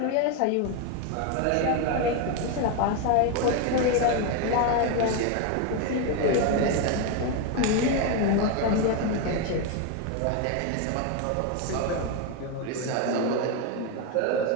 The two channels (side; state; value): both; different; correlation 0.02